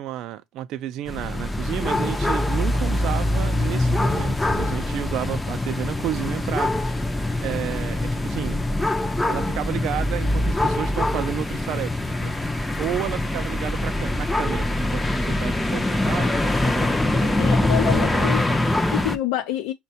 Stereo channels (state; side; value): normal; both; correlation 0.83